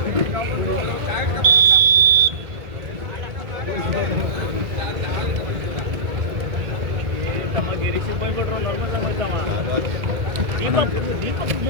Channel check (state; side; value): late; left; 1.8 ms